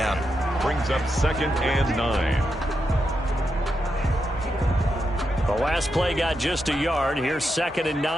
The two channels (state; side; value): normal; both; correlation 0.85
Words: Brings up 2nd and 9. The last play got just a yard. Here's 2nd and